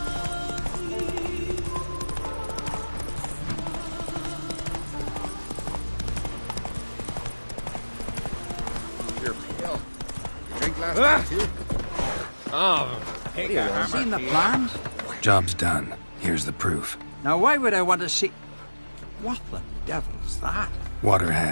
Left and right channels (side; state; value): both; inverted; correlation -1.00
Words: You're pale. You drink last night too? Oh, Seen the plans? Job's done. Here's the proof. Now why would I want to see... What the devil's that? Water